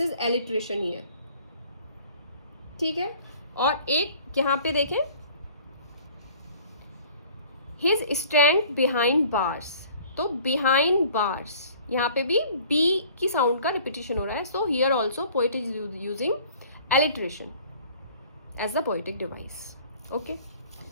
एलिटरेशन हियर, ठीक है। और एक यहाँ पे देखें, हिज स्टैंड बिहाइंड बार्स, तो बिहाइंड बार्स, यहाँ पे भी बी की साउंड का रिपीटिशन हो रहा है, so here also poet is using alliteration as the poetic device, okay.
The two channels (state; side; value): inverted; both; correlation -0.51